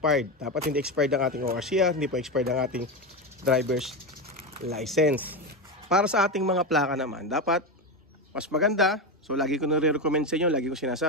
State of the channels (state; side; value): normal; both; correlation 0.15